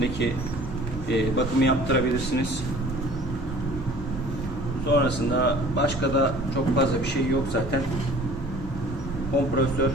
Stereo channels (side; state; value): both; normal; correlation 0.48